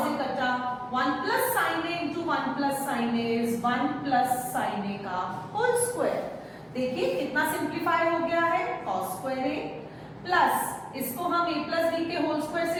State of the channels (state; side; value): identical; both; correlation 1.00